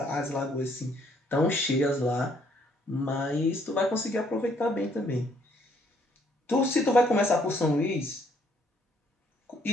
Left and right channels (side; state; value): both; normal; correlation 0.66